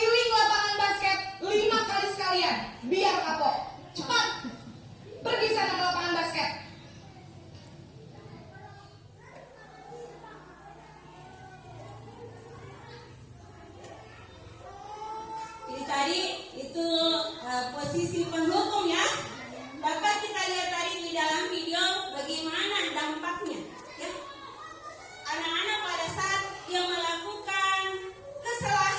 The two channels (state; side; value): identical; both; correlation 1.00